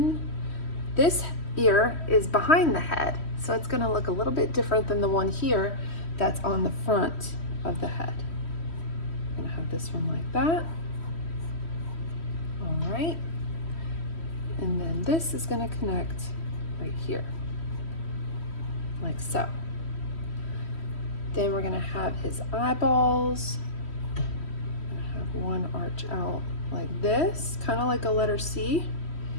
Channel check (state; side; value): late; right; 3.1 ms